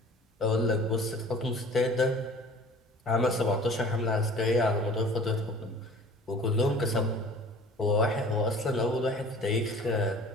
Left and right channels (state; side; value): normal; both; correlation 0.46